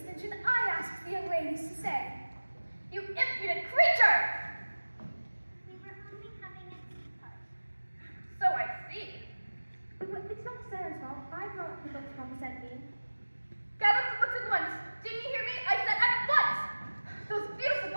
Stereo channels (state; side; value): inverted; both; correlation -1.00